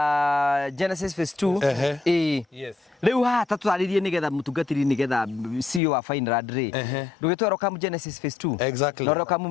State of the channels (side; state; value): right; drops out; at 5.8 s